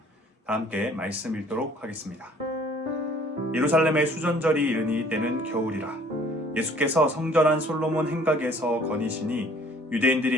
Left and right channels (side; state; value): both; normal; correlation 0.56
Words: 다 함께 말씀 읽도록 하겠습니다. 예루살렘의 수전절이 이르니 때는 겨울이라. 예수께서 성전한 솔로몬 행각에서 거니시니